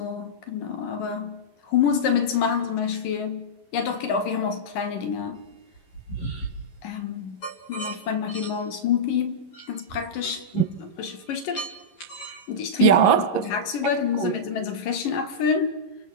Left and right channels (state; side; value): late; right; 11 ms